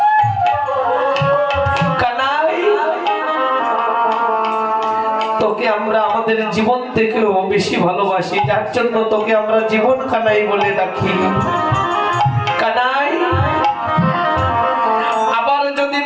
কানাই তোকে আমরা আমাদের জীবন থেকেও বেশি ভালোবাসি, যার জন্য তোকে আমরা জীবন কানাই বলে ডাকি। কানাই আবার যদি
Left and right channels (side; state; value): both; identical; correlation 1.00